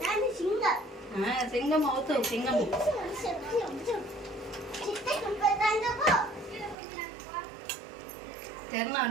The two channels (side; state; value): left; drops out; at 6.8 s